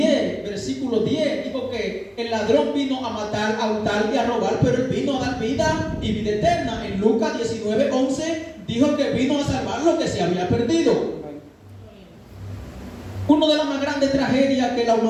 versículo 10, dijo que el ladrón vino a matar, a hurtar y a robar, pero él vino a dar vida y vida eterna. En Lucas 19:11 dijo que vino a salvar lo que se había perdido. Una de las más grandes tragedias que la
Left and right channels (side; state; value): both; identical; correlation 1.00